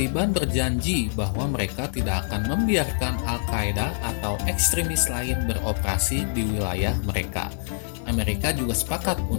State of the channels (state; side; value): silent; right; digital silence